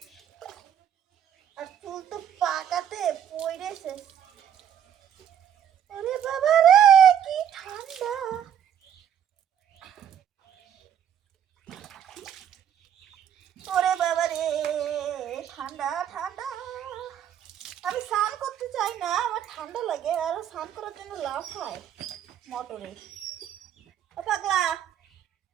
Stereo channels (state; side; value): quieter; left; 9.2 dB